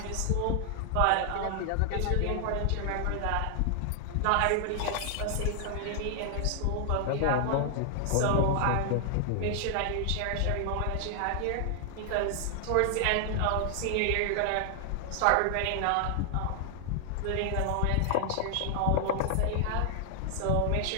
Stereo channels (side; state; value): both; different; correlation 0.00